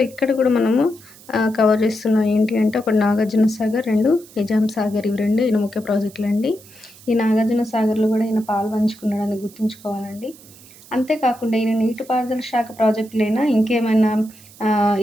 ఇక్కడ కూడా మనము కవర్ చేస్తున్నాం. ఏంటి అంటే ఒకటి నాగార్జున సాగర్, 2 నిజాం సాగర్. ఇవి 2 ఈయన ముఖ్య ప్రాజెక్టులు అండి. ఈ నాగార్జున సాగర్లో కూడా ఈయన పాలు పంచుకున్నాడని గుర్తుంచుకోవాలండి. అంతేకాకుండా ఈయన నీటిపారుదల శాఖ ప్రాజెక్టులైనా ఇంకేమైనా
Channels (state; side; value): noise; right; hiss, 22 dB below the sound